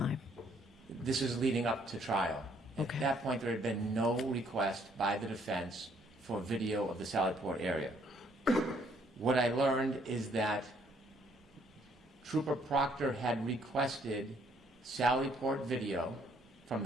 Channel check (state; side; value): normal; both; correlation 0.66